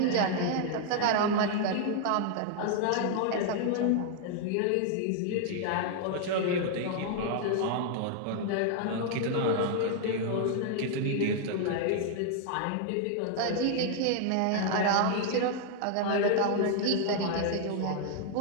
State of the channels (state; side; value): different; both; correlation 0.00